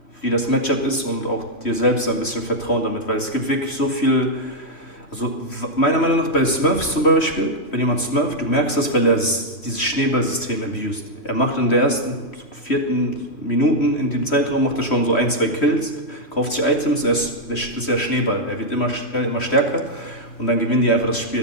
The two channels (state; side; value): late; right; 3.1 ms